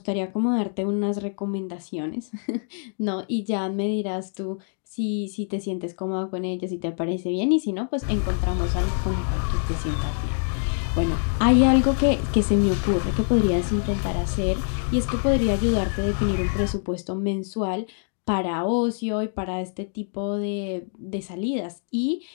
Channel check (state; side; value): silent; right; 62 dB below the other